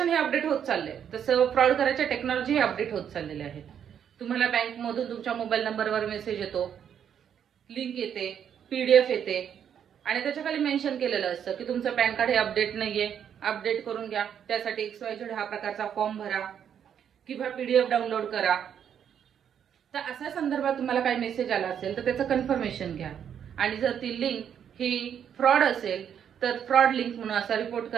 हे अपडेट होत चाललंय तसं फ्रॉड करायच्या टेक्नॉलॉजी हे अपडेट होत चाललेले आहेत. तुम्हाला बँकमधून तुमच्या मोबाईल नंबरवर मेसेज येतो, लिंक येते, PDF येते आणि त्याच्या खाली मेन्शन केलेलं असतं की तुमचं पॅन कार्ड हे अपडेट नाहीये, अपडेट करून घ्या. त्यासाठी XYZ हा प्रकारचा फॉर्म भरा किंवा PDF डाउनलोड करा. तर अशा संदर्भात तुम्हाला काही मेसेज आला असेल तर त्याचं कन्फर्मेशन घ्या आणि जर ती लिंक ही फ्रॉड असेल तर फ्रॉड लिंक म्हणून असा रिपोर्ट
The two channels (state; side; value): quieter; left; 8.7 dB